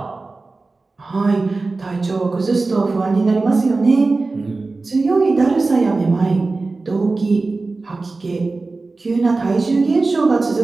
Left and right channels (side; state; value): left; quieter; 3.6 dB